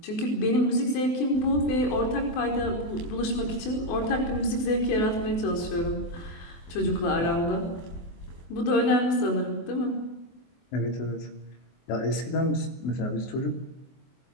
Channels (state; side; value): late; right; 24 ms